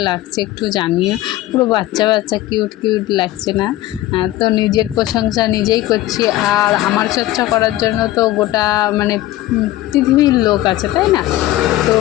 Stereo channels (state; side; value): quieter; right; 15.6 dB